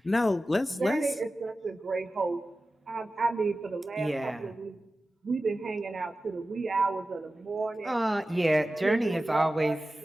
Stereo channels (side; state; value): both; normal; correlation 0.95